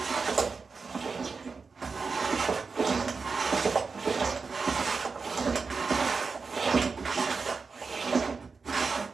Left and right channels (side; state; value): left; quieter; 4.7 dB